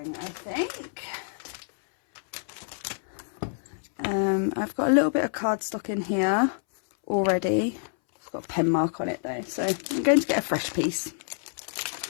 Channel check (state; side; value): silent; right; 59 dB below the other